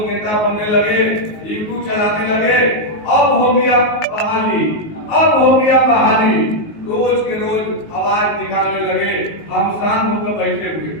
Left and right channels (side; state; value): right; late; 19 ms